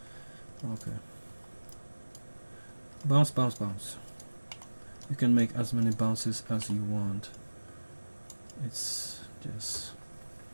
Okay, bounce, bounce, bounce. You can make as many bounces as you want. It's just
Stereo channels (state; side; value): inverted; both; correlation -1.00